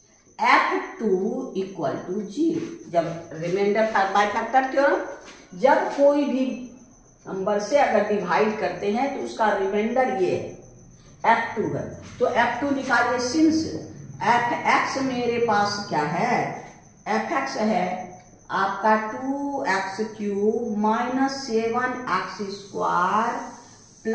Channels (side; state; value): both; identical; correlation 1.00